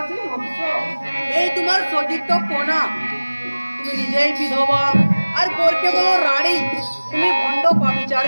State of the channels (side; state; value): both; inverted; correlation -1.00